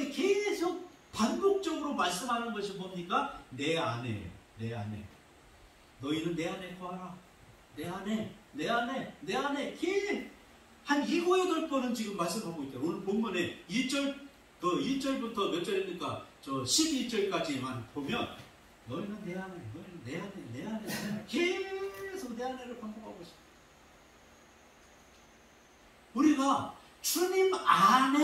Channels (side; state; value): both; identical; correlation 1.00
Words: 계속 반복적으로 말씀하는 것이 뭡니까? 내 안에, 내 안에. 너희는 내 안에 거하라. 내 안에, 내 안에, 내 안에. 한 7, 8번은 지금 말씀하고 있다. 오늘 본문에 1절부터 몇 절입니까? 저 12절까지만 보면 너희는 내 안에, 너희는 내 안에, 내 안에. 계속 내 안에를 반복하고 있습니다. 우리가 주님